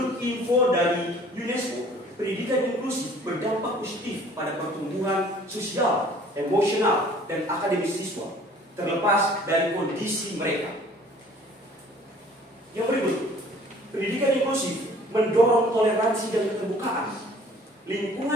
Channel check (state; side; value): normal; both; correlation 0.52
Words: info dari UNESCO, pendidikan inklusif berdampak positif pada pertumbuhan sosial, emosional, dan akademis siswa, terlepas dari kondisi mereka. Yang berikut, pendidikan inklusif mendorong toleransi dan keterbukaan.